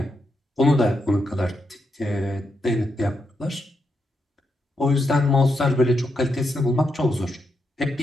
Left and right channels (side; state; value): both; normal; correlation 0.83